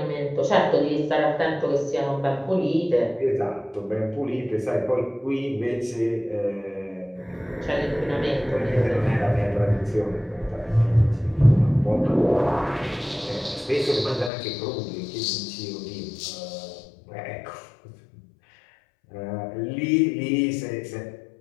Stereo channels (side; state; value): right; drops out; at 14.3 s